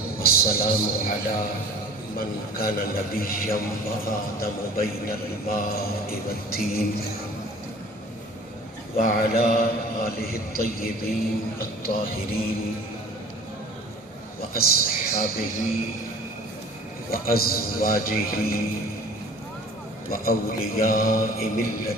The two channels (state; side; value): normal; both; correlation 0.46